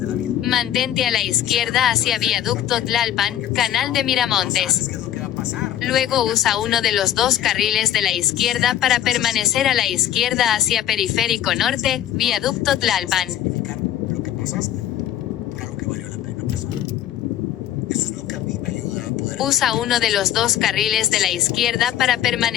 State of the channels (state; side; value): quieter; right; 11.7 dB